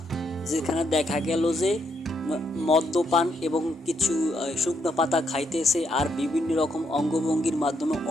যেখানে দেখা গেল যে মদ্যপান এবং কিছু শুকনো পাতা খাইতেছে আর বিভিন্ন রকম অঙ্গভঙ্গির মাধ্যমে,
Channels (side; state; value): both; normal; correlation 0.76